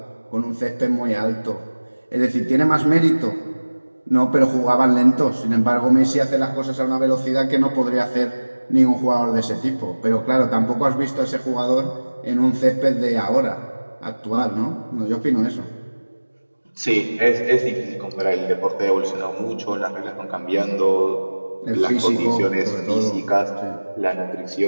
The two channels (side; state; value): both; inverted; correlation -1.00